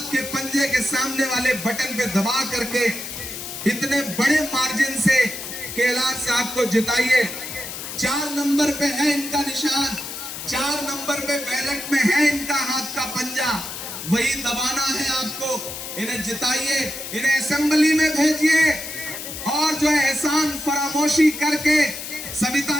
के पंजे के सामने वाले बटन पे दबा करके इतने बड़े मार्जिन से केएलआर साहब को जिताइए। 4 नंबर पे है इनका निशान, 4 नंबर पे बैलेट में है इनका हाथ का पंजा, वही दबाना है आपको। इन्हें जिताइए, इन्हें असेंबली में भेजिए और जो है एहसान फरामोशी करके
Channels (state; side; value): noise; left; hiss, 8 dB below the sound